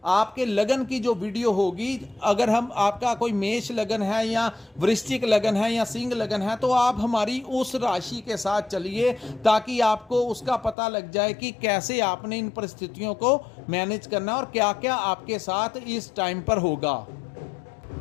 आपके लगन की जो वीडियो होगी, अगर हम आपका कोई मेष लगन है या वृश्चिक लगन है या सिंह लगन है तो आप हमारी उस राशि के साथ चलिए, ताकि आपको उसका पता लग जाए कि कैसे आपने इन परिस्थितियों को मैनेज करना और क्या क्या आपके साथ इस टाइम पर होगा।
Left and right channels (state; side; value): drops out; right; at 10.8 s